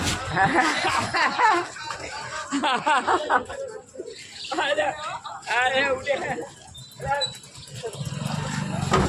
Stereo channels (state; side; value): identical; both; correlation 1.00